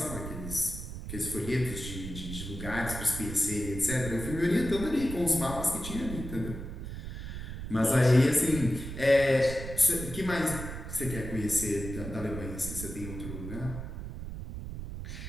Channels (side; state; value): right; noise; rumble, 8 dB below the sound